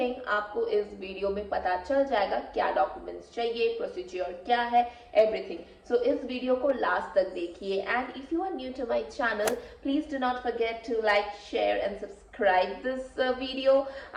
आपको इस video में पता चल जाएगा क्या documents चाहिए, procedure क्या है, एवरीथिंग. सो इस वीडियो को लास्ट तक देखिए and if you are new to my channel please do not forget to like, share and subscribe this video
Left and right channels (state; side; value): identical; both; correlation 1.00